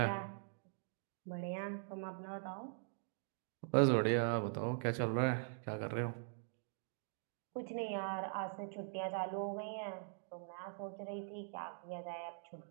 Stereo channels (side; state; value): left; silent; digital silence